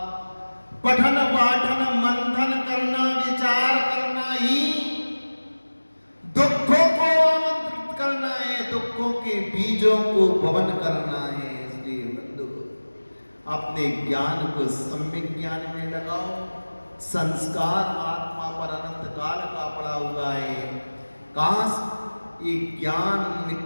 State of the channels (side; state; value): both; inverted; correlation -1.00